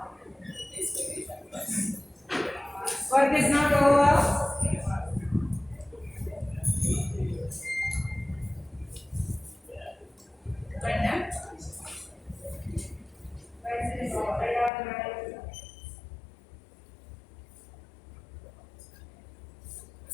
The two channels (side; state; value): right; drops out; at 14.7 s